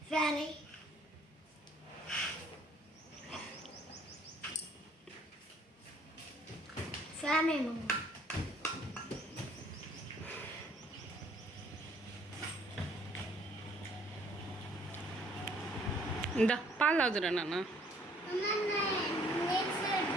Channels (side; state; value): both; normal; correlation 0.61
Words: ఫ్యాన్ ఫ్యాన్ ఏమో ఇందా పాలు తాగుదురా నాన్న.